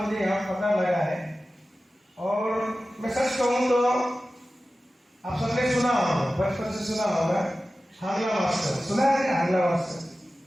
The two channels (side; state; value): both; normal; correlation 0.95